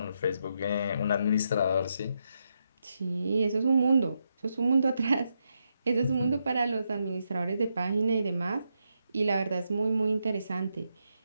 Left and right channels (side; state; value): both; inverted; correlation -0.82